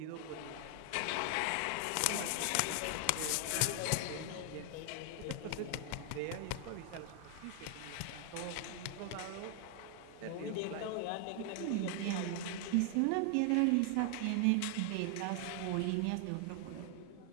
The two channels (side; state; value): both; different; correlation 0.00